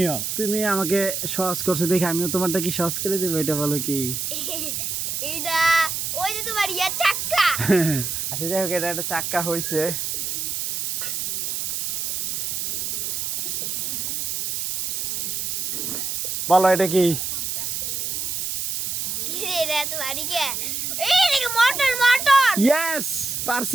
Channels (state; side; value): noise; right; hiss, 2 dB below the sound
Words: তুমি আমাকে সহজ করছো দেখে আমিও তোমারটা কি সহজ করে দেবো, এটা বলো কি? এটা ওই যে তোমার ইয়া চাক্কা। আচ্ছা যাই হোক, এটা একটা চাক্কা হয়েছে। বলো এটা কি? কি রে, এটা তো বাড়ি কে? এই দেখো, মোটর মোটর। ইয়েস,